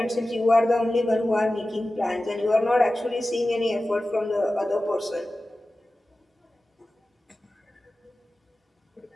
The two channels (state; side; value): normal; both; correlation 0.95